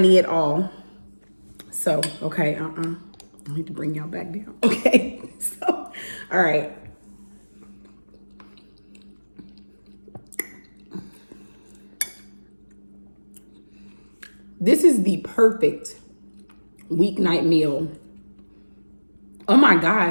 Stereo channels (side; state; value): both; inverted; correlation -1.00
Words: at all. So, okay, I need to bring y'all back down. Okay, so, all right. This is the perfect weeknight meal. Oh my